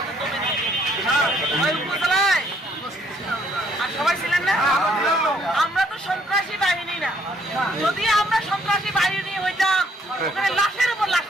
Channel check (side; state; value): both; normal; correlation 0.66